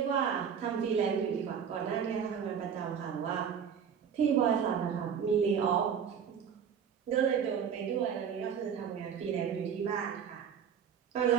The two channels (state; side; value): quieter; left; 7.6 dB